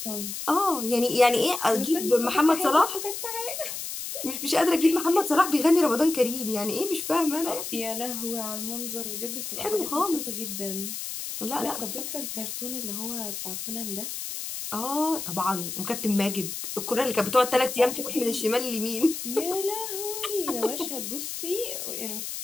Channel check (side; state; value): left; noise; hiss, 6 dB below the sound